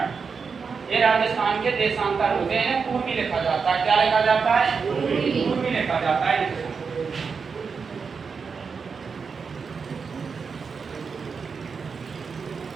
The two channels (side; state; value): left; quieter; 5.5 dB